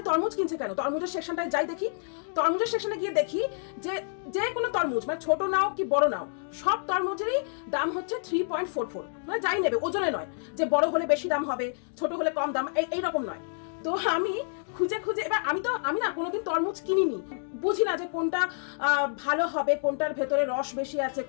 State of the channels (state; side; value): silent; right; digital silence